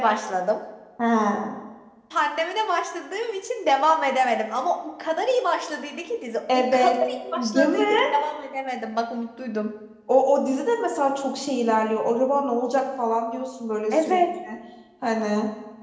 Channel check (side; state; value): both; identical; correlation 1.00